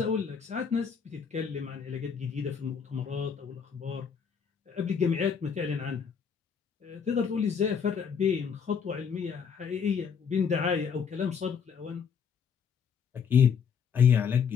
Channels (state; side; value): quieter; right; 6.7 dB